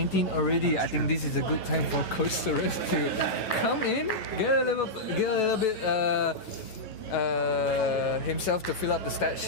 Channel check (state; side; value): late; right; 9.2 ms